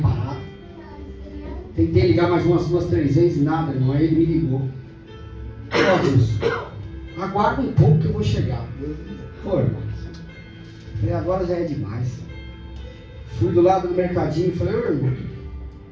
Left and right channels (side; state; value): both; identical; correlation 1.00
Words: parado. Tentei ligar mais umas 2, 3 vezes, nada, irmão. Aí ele me ligou. Ó, Deus, aguarda um pouco que eu vou chegar. Pô, irmão. Falei, agora já é demais. Fui do lado do mercadinho e falei, ô, irmão,